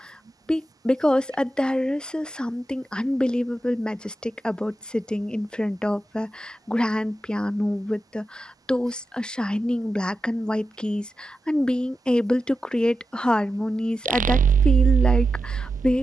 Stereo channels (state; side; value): normal; both; correlation 0.90